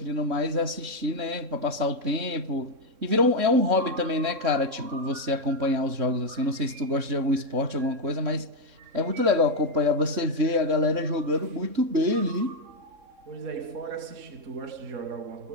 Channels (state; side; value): late; left; 3.6 ms